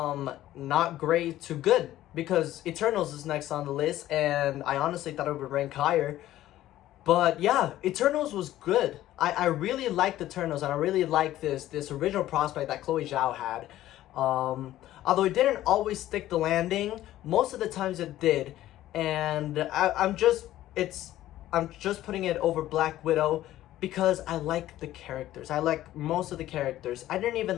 not great to good, because Eternals is next on the list, and I honestly thought it would rank higher. But yeah, Eternals was good. I really liked Eternals, and I really liked this original prospect that Chloe Zhao had. Although it didn't always stick the landing, most of the times it did. And I'm just putting it over Black Widow because I like the characters. I like most of the characters. I didn't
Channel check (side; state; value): right; quieter; 14.1 dB